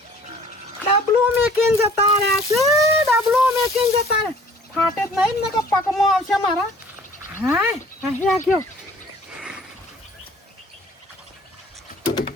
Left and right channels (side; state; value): both; normal; correlation 0.52